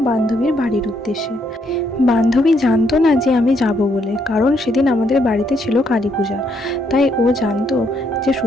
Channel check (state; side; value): normal; both; correlation 0.73